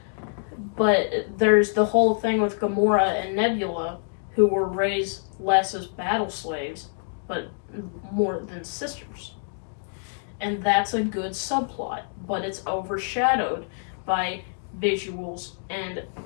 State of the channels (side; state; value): right; silent; digital silence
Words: But there's the whole thing with Gamora and Nebula, who were raised less as battle slaves, but more than sisters. And that's a good subplot, but it's overshadowed by visuals and